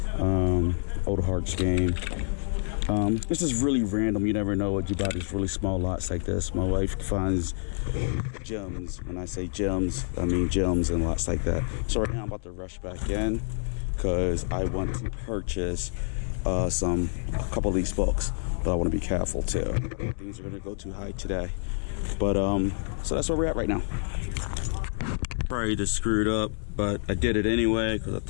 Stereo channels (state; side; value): silent; right; 60 dB below the other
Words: Old Hearts game. This is really random. You never know what you buy these really small lots like this. My wife finds gems. When I say gems, I mean gems and lots like that. So right now I'm about to rush back in because I want to purchase a couple of these books, but I want to be careful too. Things are going to go too high today. But so that's where we're at right now. Probably just screwed up, but I did it anyway because I